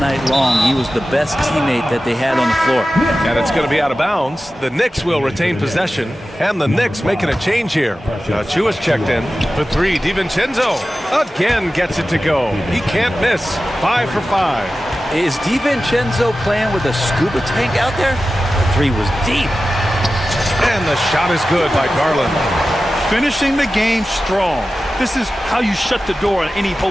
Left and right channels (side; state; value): both; normal; correlation 0.94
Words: long. He was the best teammate that they had on the floor. And it's going to be out of bounds. The Knicks will retain possession, and the Knicks making a change here. Chua's checked in for 3. DiVincenzo again gets it to go. He can't miss. 5 for 5. Is DiVincenzo playing with a scuba tank out there? The 3 was deep. And the shot is good by Garland. Finishing the game strong. This is how you shut the door on any